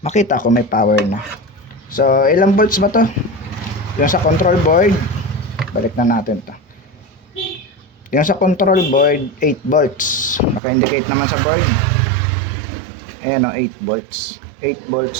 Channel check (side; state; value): left; drops out; at 10.6 s